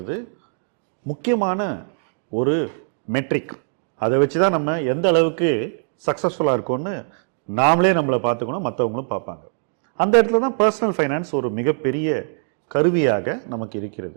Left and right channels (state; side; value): silent; left; 63 dB below the other